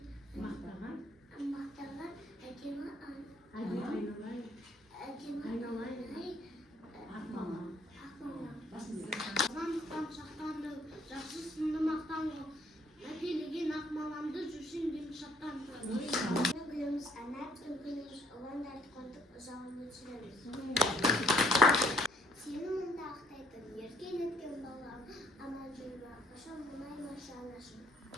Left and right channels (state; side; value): normal; both; correlation 0.63